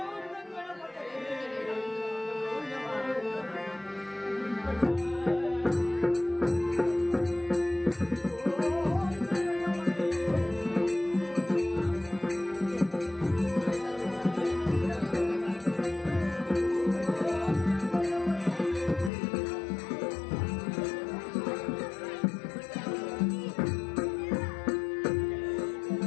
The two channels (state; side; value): drops out; right; at 19.1 s